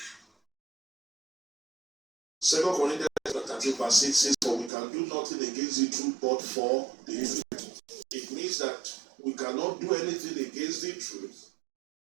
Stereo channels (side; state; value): left; drops out; at 4.7 s